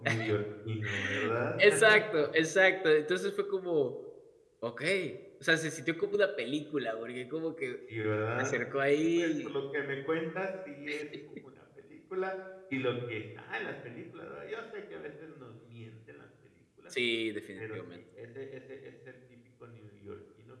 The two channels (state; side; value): identical; both; correlation 1.00